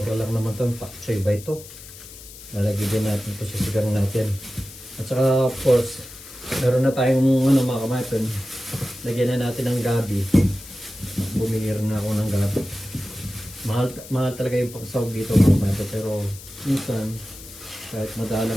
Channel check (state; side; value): noise; left; hiss, 16 dB below the sound